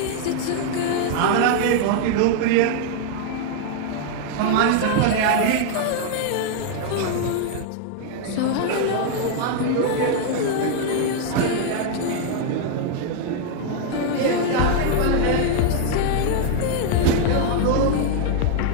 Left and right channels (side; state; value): both; different; correlation 0.00